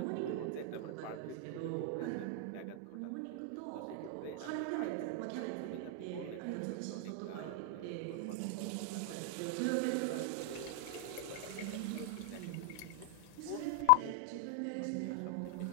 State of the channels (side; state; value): both; different; correlation 0.00